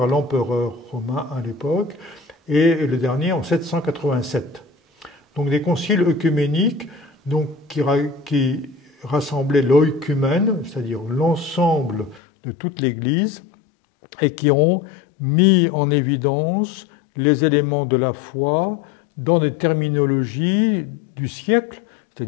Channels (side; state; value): right; drops out; at 12.2 s